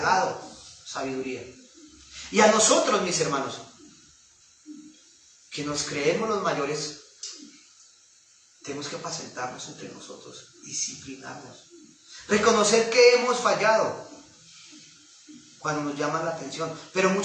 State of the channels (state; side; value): identical; both; correlation 1.00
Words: sabiduría. Y a nosotros, mis hermanos, que nos creemos los mayores, tenemos que apacentarnos entre nosotros, disciplinarnos, reconocer que hemos fallado cuando nos llaman la atención, pero